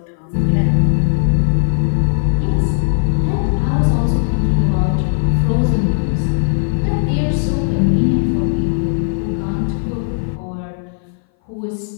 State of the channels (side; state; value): right; silent; 60 dB below the other